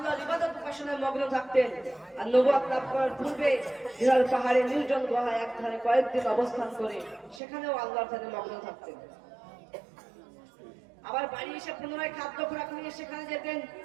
ইবাদত উপাসনায় মগ্ন থাকতেন। আর নবুয়ত লাভ করার পূর্বে হিরাল পাহাড়ে নির্জন গুহায় একধারে কয়েকদিন অবস্থান করে সেখানেও আল্লাহর ধারে মগ্ন থাকতেন। আবার বাড়ি এসে পুনরায় খাদ্য খোরাক নিয়ে সেখানে যেতেন।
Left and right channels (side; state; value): left; drops out; at 7.4 s